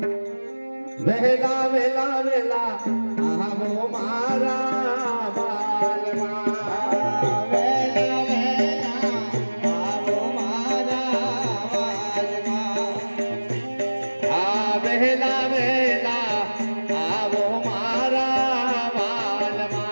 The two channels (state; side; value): inverted; both; correlation -1.00